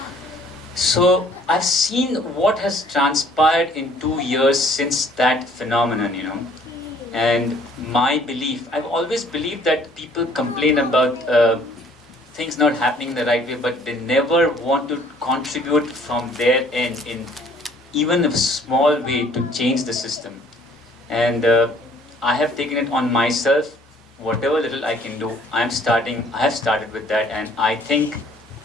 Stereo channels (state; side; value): normal; both; correlation 0.58